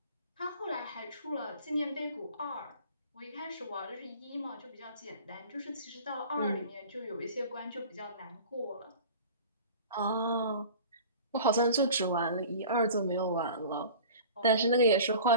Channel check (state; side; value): inverted; both; correlation -0.41